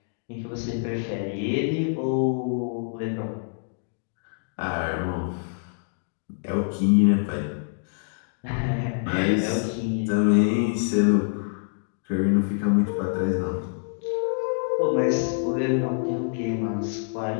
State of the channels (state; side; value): silent; right; digital silence